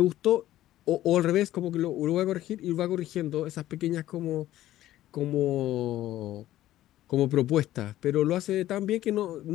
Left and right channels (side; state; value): right; quieter; 14.1 dB